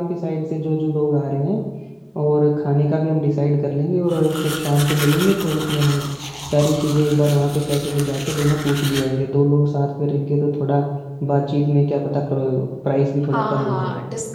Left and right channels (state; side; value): identical; both; correlation 1.00